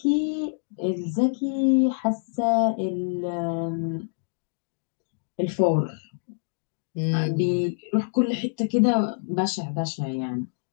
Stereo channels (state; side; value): silent; right; digital silence